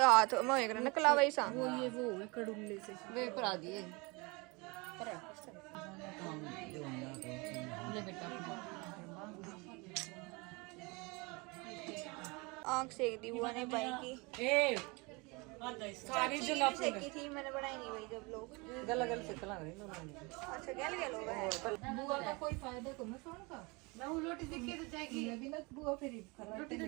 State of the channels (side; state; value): left; quieter; 27.2 dB